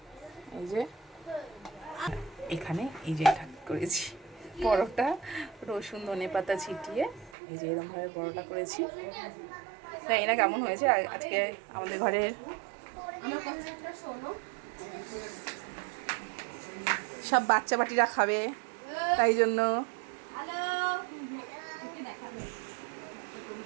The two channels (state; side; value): drops out; left; at 7.4 s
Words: এই যে এখানে এই যে এটা করেছি পরোটা, রসুন ধনে পাতা ছিটিয়ে এই যে এরকমভাবে পরোটা করেছি। তাই না কেমন হয়েছে? আজকে আমাদের ঘরের সব বাচ্চা বাটিরা খাবে, তাই জন্য।